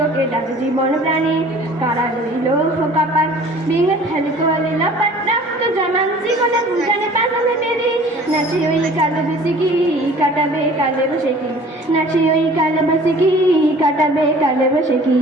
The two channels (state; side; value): normal; both; correlation 0.48